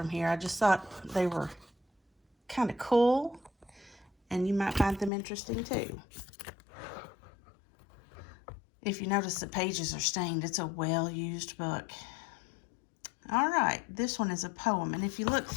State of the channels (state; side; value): drops out; right; at 5.1 s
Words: here. I just thought they were kind of cool, and you might find them interesting too. If you notice the pages are stained, it's a well-used book. All right, this one is a poem, and if you look